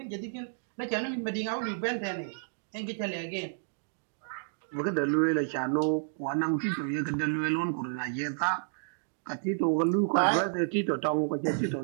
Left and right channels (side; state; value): left; silent; digital silence